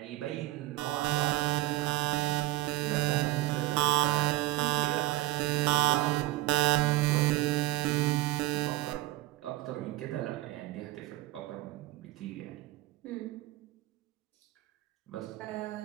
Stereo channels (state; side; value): quieter; left; 17.8 dB